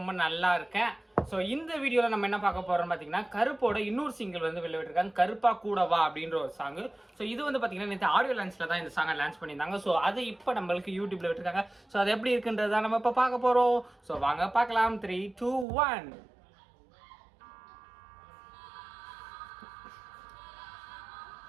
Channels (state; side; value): drops out; left; at 15.7 s